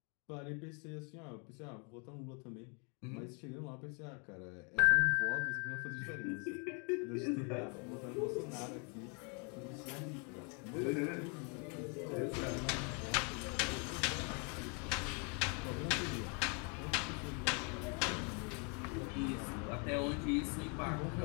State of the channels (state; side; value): quieter; right; 35.9 dB